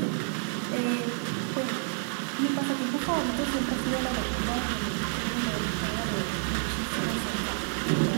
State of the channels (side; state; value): left; silent; 57 dB below the other